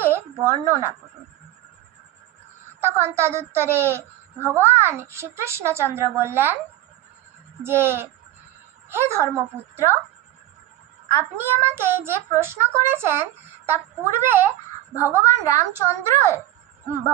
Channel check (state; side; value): quieter; left; 14.6 dB